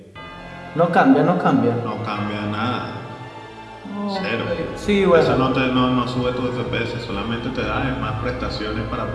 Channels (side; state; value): both; identical; correlation 1.00